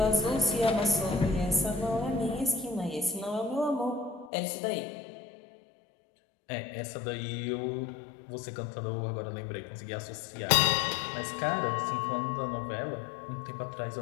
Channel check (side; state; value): right; drops out; at 4.3 s